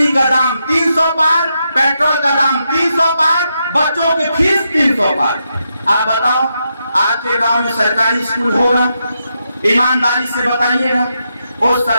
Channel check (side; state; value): both; inverted; correlation -0.83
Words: का दाम 300 पार, पेट्रोल का दाम 300 पार, बच्चों की फीस 300 पार। आप बताओ आज के गांव में सरकारी स्कूल होगा? ईमानदारी से बताइएगा। उस